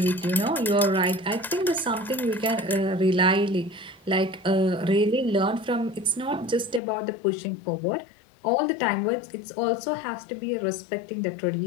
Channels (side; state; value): right; drops out; at 6.8 s